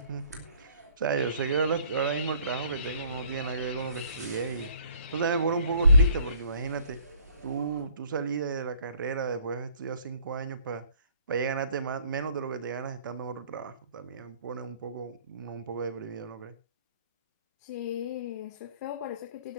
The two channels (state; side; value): inverted; both; correlation -0.58